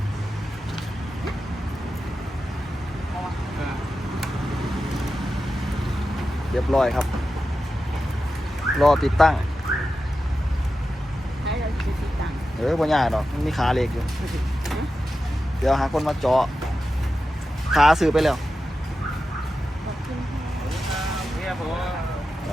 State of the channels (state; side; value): normal; both; correlation 0.91